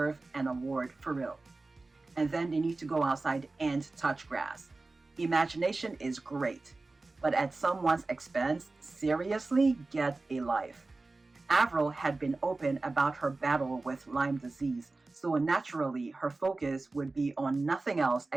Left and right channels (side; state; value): left; quieter; 3.4 dB